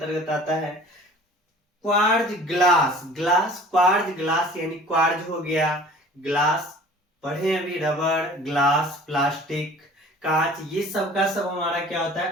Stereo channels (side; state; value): both; normal; correlation 0.46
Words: आता है। Quartz glass, glass quartz glass यानी क्वार्ज हो गया, ग्लास पढ़े अभी, रबर, ग्लास, प्लास्टिक, कांच, ये सब का सब हमारा क्या होता है,